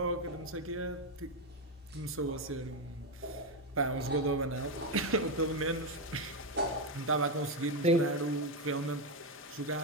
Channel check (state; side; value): normal; both; correlation 0.07